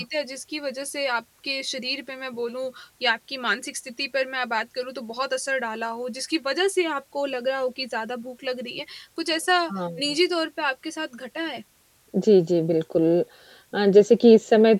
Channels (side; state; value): both; identical; correlation 1.00